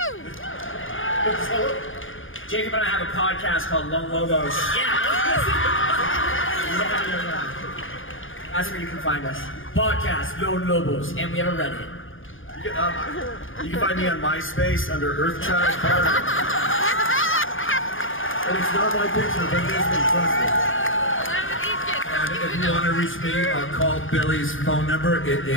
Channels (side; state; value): right; late; 0.58 ms